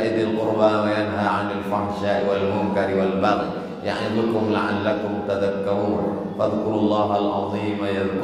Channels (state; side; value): identical; both; correlation 1.00